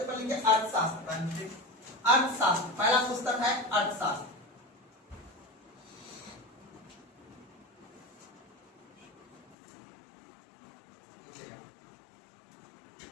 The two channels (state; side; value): drops out; right; at 9.6 s